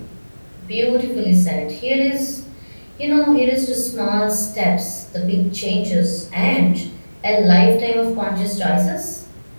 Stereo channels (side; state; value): both; inverted; correlation -1.00